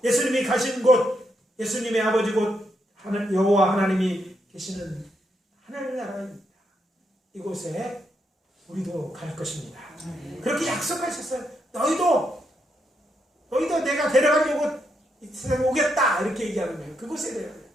예수님이 가신 곳, 예수님의 아버지 곳 여호와 하나님이 계시는 하늘나라입니다. 이곳에 우리도 갈 것입니다. 그렇게 약속하셨어요. 너희도 내가 데려가려고 이 세상에 오겠다. 이렇게 얘기하는 거예요. 그곳에 데려가요.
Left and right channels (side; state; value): both; normal; correlation 0.80